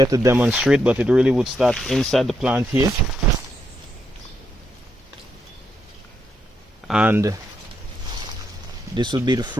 to demonstrate, but it really would start inside the plant here. And this would be the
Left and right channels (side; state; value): both; normal; correlation 0.80